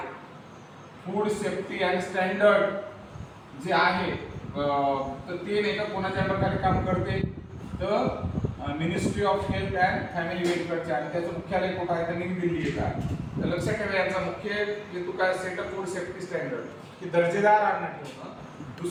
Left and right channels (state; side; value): identical; both; correlation 1.00